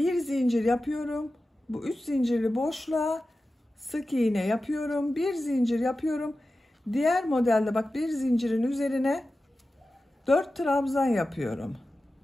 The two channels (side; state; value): both; normal; correlation 0.94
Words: zincir yapıyorum. Bu 3 zincirli boşluğa sık iğne yapıyorum. Bir zincir yapıyorum. Diğer modelde bak, bir zincirin üzerine 4 trabzan yapıyorum.